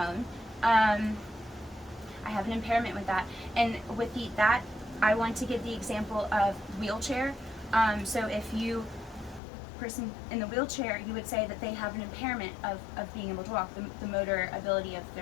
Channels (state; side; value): drops out; right; at 9.4 s